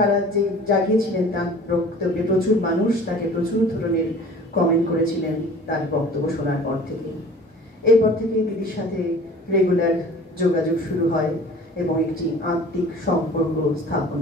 যে জাগিয়েছিলেন তার বক্তব্যে, প্রচুর মানুষ তাকে প্রচুর ধরনের কমেন্ট করেছিলেন তার বক্তব্য শোনার পর থেকে। এরপর থেকে দিদির সাথে রেগুলার যোগাযোগ শুরু হয় এবং একটি আত্মিক সম্পর্ক স্থাপন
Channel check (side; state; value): both; normal; correlation 0.45